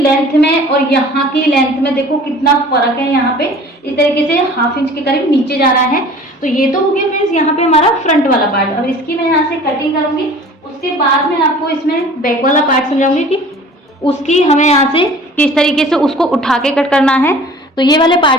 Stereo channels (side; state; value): both; normal; correlation 0.46